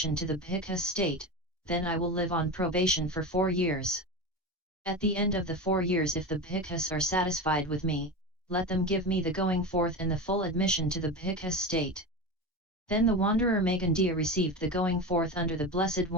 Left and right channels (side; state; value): both; normal; correlation 0.23